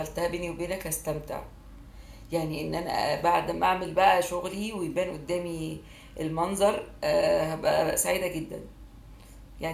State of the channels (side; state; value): both; identical; correlation 1.00